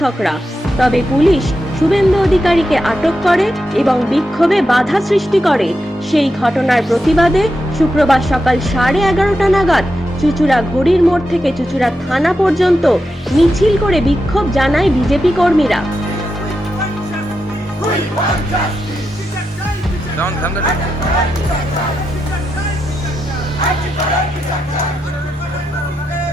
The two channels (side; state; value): both; normal; correlation 0.87